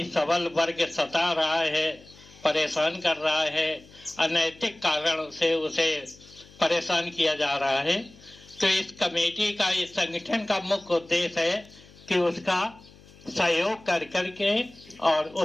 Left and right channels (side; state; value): left; noise; hum, 24 dB below the sound